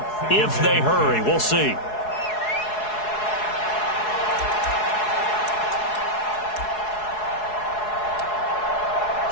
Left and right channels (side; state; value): right; late; 4.7 ms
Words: if they hurry. We'll see.